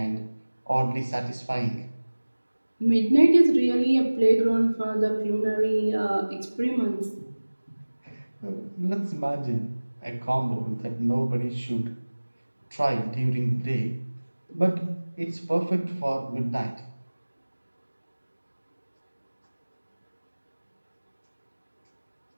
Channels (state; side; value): inverted; both; correlation -1.00